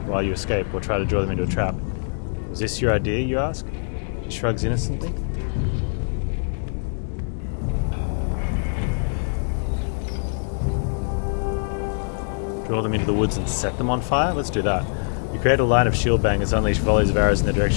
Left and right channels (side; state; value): right; silent; digital silence